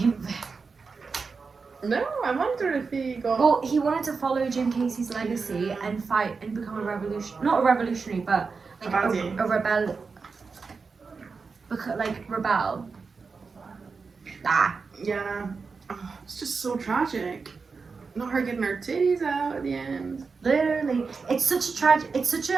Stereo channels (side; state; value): left; quieter; 4.8 dB